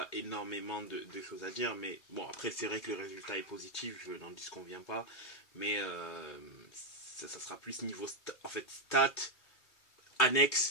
énormément de choses à dire. Mais bon, après, c'est vrai que le résultat est positif, je n'en disconviens pas. Mais ça sera plus niveau stats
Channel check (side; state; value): right; late; 2.3 ms